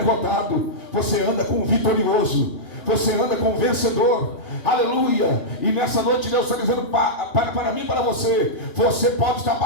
você anda com vitorioso. Você anda com vencedor. Aleluia. E nessa noite Deus está dizendo para mim e para você, você pode estar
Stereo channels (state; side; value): late; right; 2.9 ms